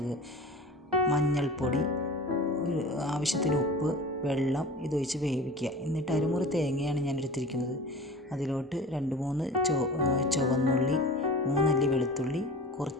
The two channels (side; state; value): both; normal; correlation 0.37